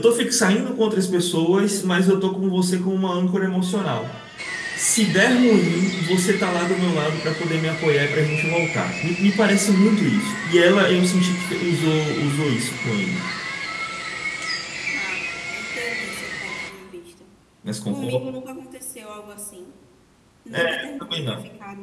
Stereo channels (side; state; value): both; identical; correlation 1.00